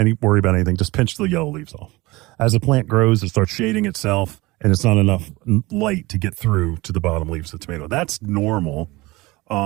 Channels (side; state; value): left; quieter; 21.7 dB